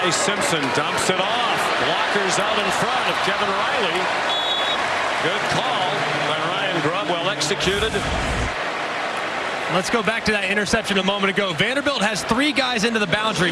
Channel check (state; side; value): identical; both; correlation 1.00